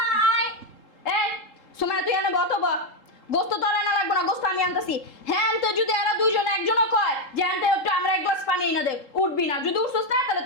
এই সুমাইয়া তুই এনে বত ব গোস্ত তো আর আনা লাগবে না, গোস্ত আমি আনতেছি। হ্যাঁ আনতে যদি এরা দুইজন একজনও কয় যে আনতে একটু আমরা এক গ্লাস পানি এনে দে, উঠবি না। যদি উঠছস না তাহলে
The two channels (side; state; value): right; late; 3.8 ms